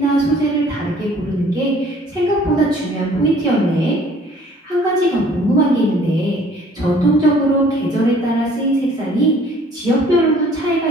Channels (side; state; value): both; normal; correlation 0.56